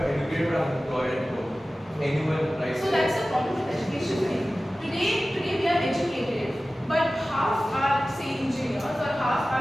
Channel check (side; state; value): both; normal; correlation 0.96